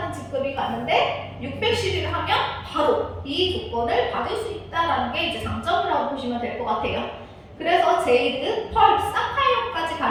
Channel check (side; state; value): both; identical; correlation 1.00